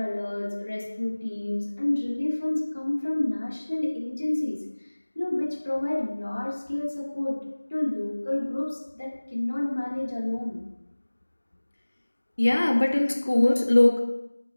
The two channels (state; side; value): inverted; both; correlation -1.00